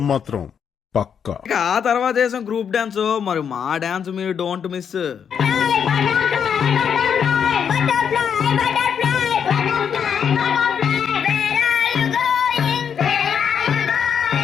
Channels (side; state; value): right; quieter; 7.6 dB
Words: మాత్రం పక్కా. ఇక ఆ తర్వాత వేసాం గ్రూప్ డాన్స్. మరి మా డాన్స్ మీరు don't miss.